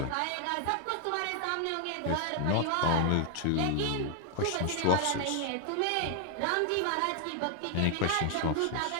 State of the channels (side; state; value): both; different; correlation 0.00